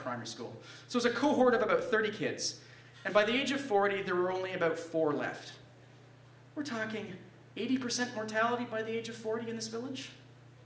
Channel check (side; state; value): both; identical; correlation 1.00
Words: school. So it was a cohort of about 30 kids. And by the age of 40, there were only about 4 left. We're talking 80% mortality by the age of 40 in this village?